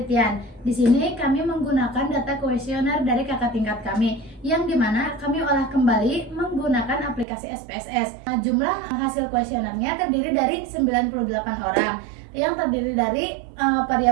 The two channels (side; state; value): left; drops out; at 7.2 s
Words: Di sini kami menggunakan data kuesioner dari kakak tingkat kami, yang dimana kami olah kembali menggunakan aplikasi SPSS. Nah, jumlah hasil kuesionernya terdiri dari 98 orang, yang terdiri dari